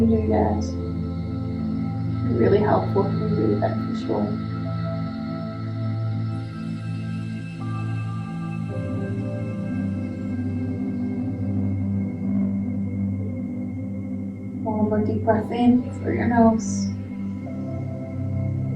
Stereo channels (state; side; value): identical; both; correlation 1.00